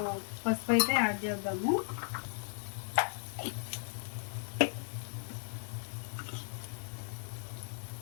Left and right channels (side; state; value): right; silent; digital silence